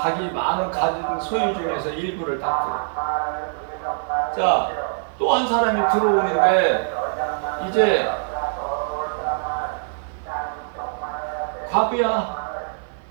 많은 가진 소유 중에서 일부를 딱 들어. 또 한 사람이 들어오는데 이제 과부야,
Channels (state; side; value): silent; left; 58 dB below the other